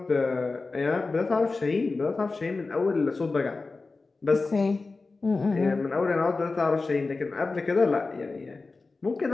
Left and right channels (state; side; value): quieter; right; 3.8 dB